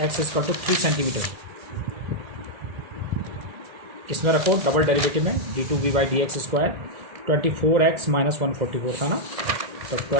3 centimetre, इसमें रखो डबल डेरिवेटिव में d2v by dx square. 24x minus 144 था ना, तो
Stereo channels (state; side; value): late; left; 2.0 ms